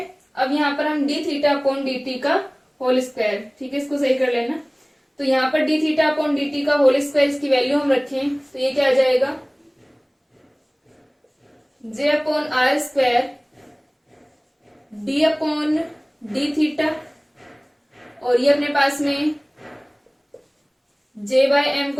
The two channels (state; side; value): identical; both; correlation 1.00